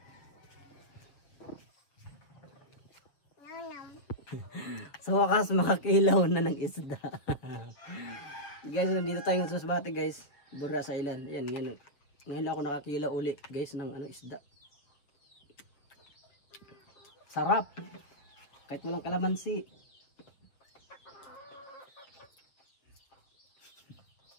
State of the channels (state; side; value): late; right; 6.9 ms